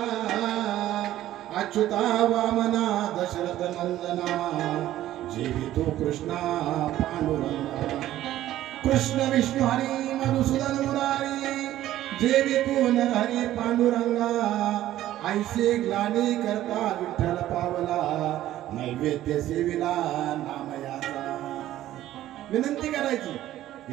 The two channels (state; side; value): quieter; left; 13.6 dB